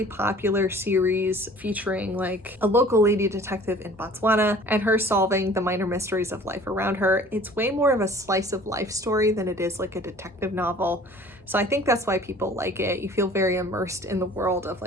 popular series featuring a local lady detective in Botswana and her solving the minor mysteries of life around her. It's way more of a slice of life story than it is a detective novel. So I think that's why people like it. You feel very immersed in the world of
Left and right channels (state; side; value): normal; both; correlation 0.49